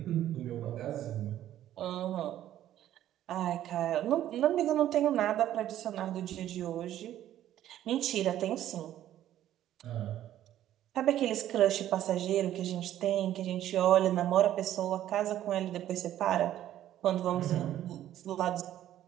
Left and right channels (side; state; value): left; quieter; 12.3 dB